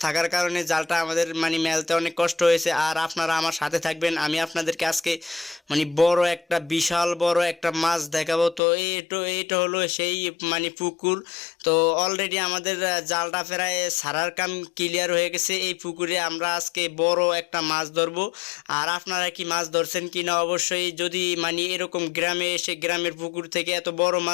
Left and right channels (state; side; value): drops out; right; at 8.6 s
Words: থাকার কারণে জালটা আমাদের মানে মেলতে অনেক কষ্ট হয়েছে। আর আপনারা আমার সাথে থাকবেন, আমি আপনাদেরকে আজকে মানে বড় একটা বিশাল বড় একটা মাছ দেখাবো। তো এইটা হলো সেই মানে পুকুর। তো অলরেডি আমাদের জালটা প্রায় সারার কাম ক্লিয়ার হয়ে গেছে, এই পুকুরে আমরা আজকে বড় একটা মাছ ধরবো। আর আপনারা কি মাছ ধরছেন কি না অবশ্যই, যদি মানে এরকম গ্রামে এসে গ্রামের পুকুর থেকে এত বড়